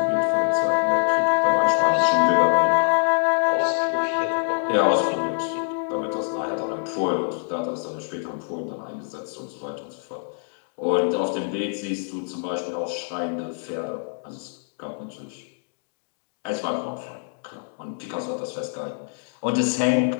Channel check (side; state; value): right; silent; digital silence